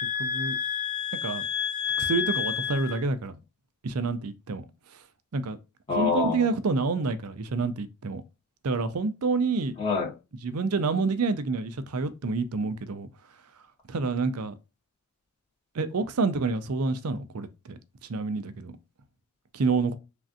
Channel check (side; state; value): both; normal; correlation 0.29